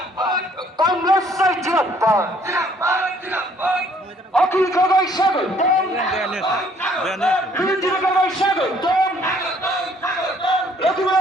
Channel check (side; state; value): both; normal; correlation 0.62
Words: কংগ্রেস জিন্দাবাদ অখিল গগৈ স্বাগতম বিরোধী গগৈ স্বাগতম